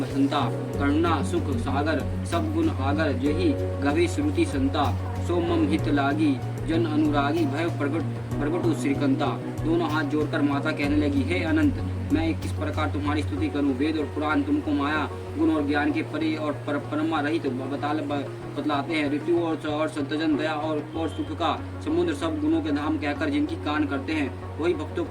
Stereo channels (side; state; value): both; identical; correlation 1.00